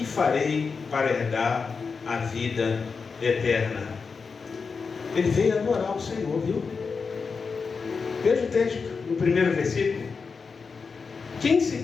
farei para herdar a vida eterna? Ele veio adorar o Senhor, viu? Veja o texto, no primeiro versículo. Quem se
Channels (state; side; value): quieter; right; 5.1 dB